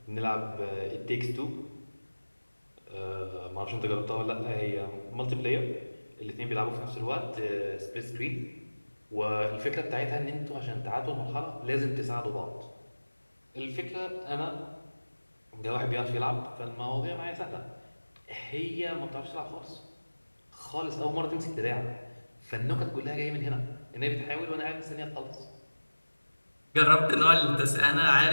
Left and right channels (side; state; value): both; inverted; correlation -1.00